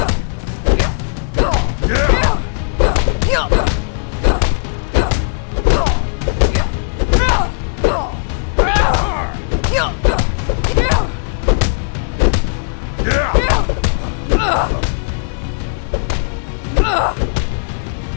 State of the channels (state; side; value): silent; right; digital silence